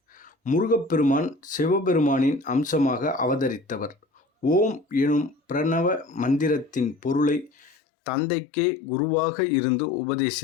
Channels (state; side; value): drops out; right; at 7.7 s